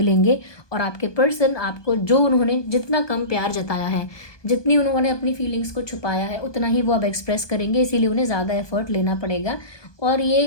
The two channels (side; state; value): right; late; 1.2 ms